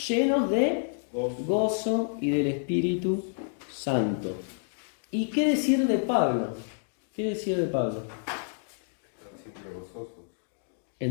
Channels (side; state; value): right; silent; digital silence